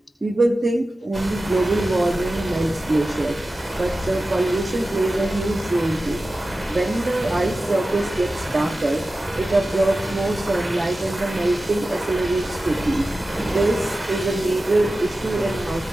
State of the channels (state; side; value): normal; both; correlation 0.94